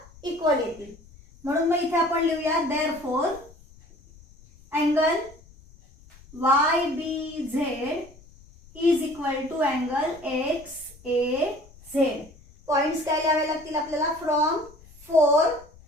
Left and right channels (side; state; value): left; noise; rumble, 24 dB below the sound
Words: इक्वल येतील. म्हणून मग इथे आपण लिहूया therefore angle YBZ is equal to angle XAZ. Points काय लिहावे लागतील आपल्याला, फ्रॉम 4,